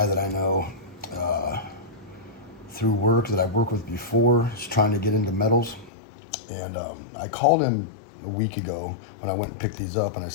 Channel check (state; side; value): drops out; right; at 5.9 s